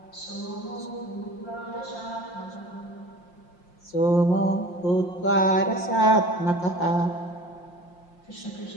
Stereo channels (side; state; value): right; late; 5.7 ms